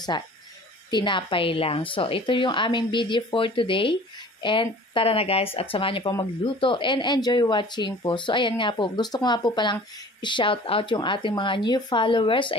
tinapay lang. So, ito yung aming video for today. And tara na guys, at samahan niyo po magluto and enjoy watching po. So, ayan nga po, gusto ko nga po palang i-shout out yung ating mga new followers.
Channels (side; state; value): both; normal; correlation 0.46